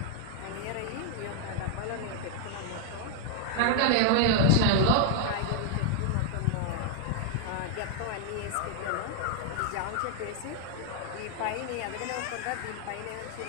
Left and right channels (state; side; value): different; both; correlation 0.00